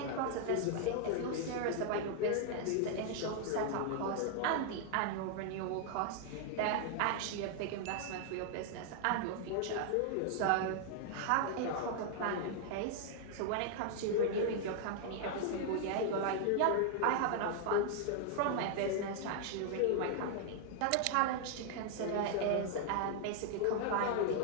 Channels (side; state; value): both; different; correlation 0.00